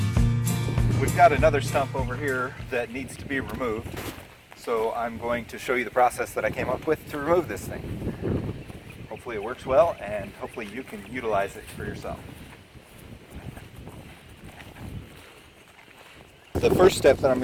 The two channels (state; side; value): identical; both; correlation 1.00